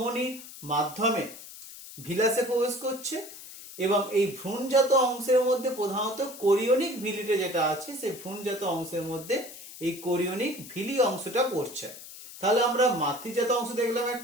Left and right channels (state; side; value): noise; left; hiss, 15 dB below the sound